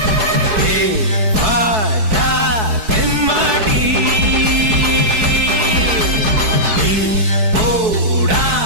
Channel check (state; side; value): late; left; 4.7 ms